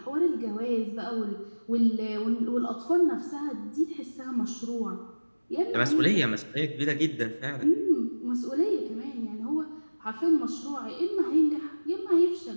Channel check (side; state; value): both; inverted; correlation -1.00